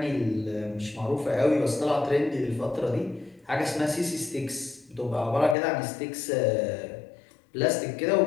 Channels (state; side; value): drops out; right; at 5.6 s